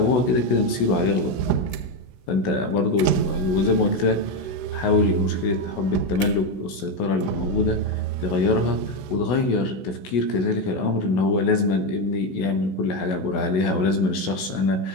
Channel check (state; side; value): late; right; 16 ms